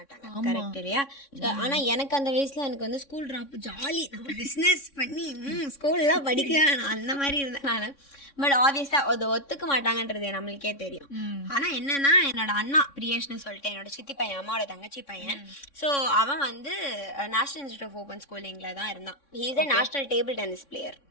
கரெக்ட் இல்லையா? ஆனா எனக்கு அந்த வயசுல எனக்கு வந்து ஸ்கூல் ட்ராப் ஜாலி, நம்ம பிசினஸ் பண்ணி ஸ்கூல்லாம் படிக்க வேணாம் அந்த மாதிரி இருந்தேன் நான். பட் ஆப்வியஸா அதை ஒத்துக்க மாட்டாங்கன்றது நம்மளுக்கே தெரியும். ஆனா என்னன்னா என்னோட அண்ணா பிரியேஷ்னு சொல்லிட்டு என்னோட சித்தி பையன், அம்மாவோட தங்கச்சி பையன். ஸோ அவன் வந்து நேஷனல் இன்ஸ்டியூட் ஆஃப் ஓப்பன் ஸ்கூலிங்ல தான் இருந்தான். He is a national table tennis player.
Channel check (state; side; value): late; right; 3.6 ms